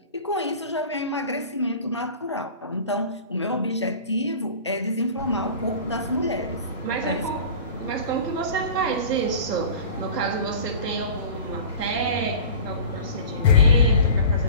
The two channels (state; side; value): inverted; both; correlation -0.38